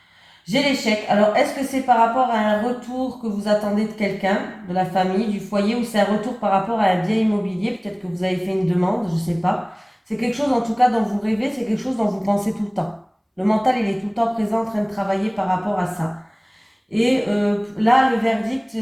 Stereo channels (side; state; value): both; identical; correlation 1.00